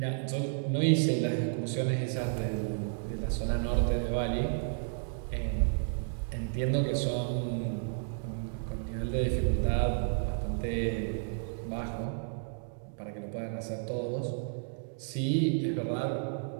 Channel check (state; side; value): silent; left; digital silence